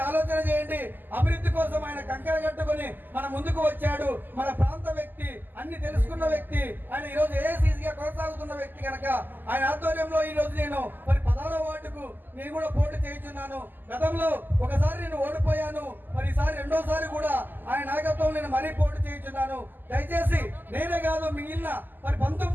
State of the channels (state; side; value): late; left; 0.090 ms